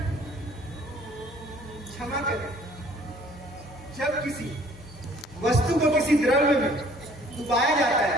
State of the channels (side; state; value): both; normal; correlation 0.56